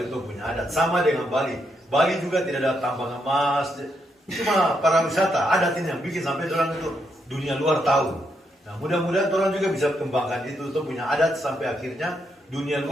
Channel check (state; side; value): normal; both; correlation 0.79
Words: itu punya adat. Sama dengan Bali. Bali juga tidak ada tambang emas, cuma pariwisata adat ini yang bikin sampai orang itu dunia luar tahu. Nah, mudah-mudahan orang juga bisa kembangkan itu punya adat sampai akhirnya dunia